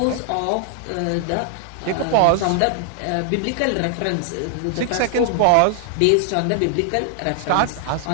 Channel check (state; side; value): different; both; correlation 0.00